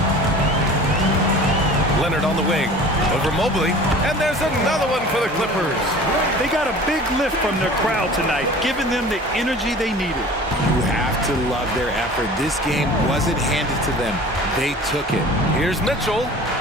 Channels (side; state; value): both; normal; correlation 0.42